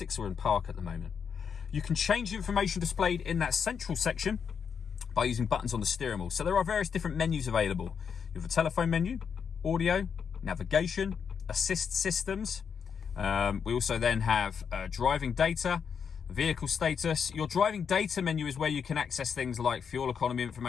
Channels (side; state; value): right; quieter; 6.8 dB